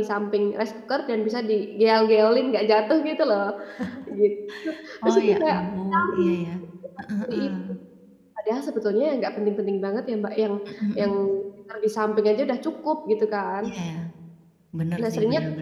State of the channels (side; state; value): both; identical; correlation 1.00